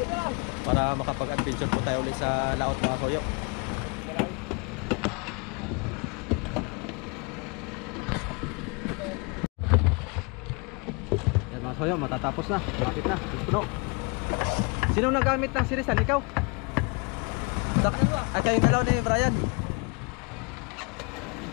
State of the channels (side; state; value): right; quieter; 32.3 dB